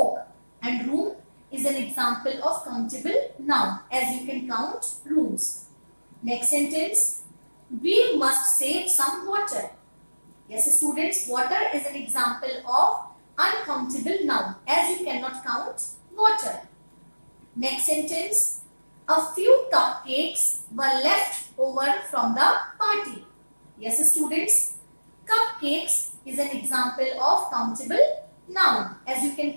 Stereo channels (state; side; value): inverted; both; correlation -1.00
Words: and room is an example of countable noun, as you can count rooms. Next sentence, we must save some water. Yes, students, water is an example of uncountable noun, as you cannot count water. Next sentence, a few cupcakes were left over from the party. Yes, students, cupcakes is an example of countable noun, as you can